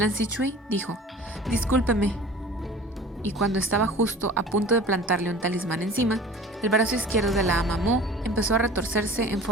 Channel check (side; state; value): both; normal; correlation 0.42